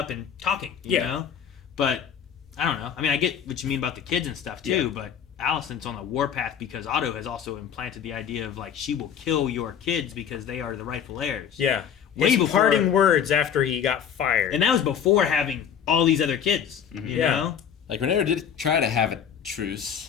and talking, you know? But, I don't know. I mean, I get what you mean about the kids and stuff, too, but Alicent's on the warpath because Otto has also implanted the idea of, like, she will kill your kids because they are the rightful heirs. Yeah. Way before, parting words after he got fired. And that was before having all these other kids, you know? Like, Rhaenyra did try to have a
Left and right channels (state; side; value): quieter; right; 8.3 dB